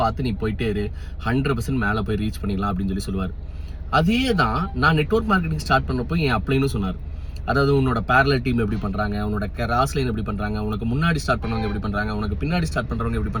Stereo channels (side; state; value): both; identical; correlation 1.00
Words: பார்த்து நீ போயிட்டே இரு, 100% மேலே போய் ரீச் பண்ணிடலாம் அப்படின்னு சொல்லுவார். அதே தான் நான் நெட்வொர்க் மார்க்கெட்டிங் ஸ்டார்ட் பண்ணப்போ என் அப்ளைன்னு சொன்னார். அதாவது உன்னோட பேரலல் டீம் எப்படி பண்ணுறாங்க, உன்னோட கிராஸ் லைன் எப்படி பண்ணுறாங்க, உனக்கு முன்னாடி ஸ்டார்ட் பண்ணுறவங்க எப்படி பண்ணுறாங்க, உனக்கு பின்னாடி ஸ்டார்ட் பண்ணுறவங்க எப்படி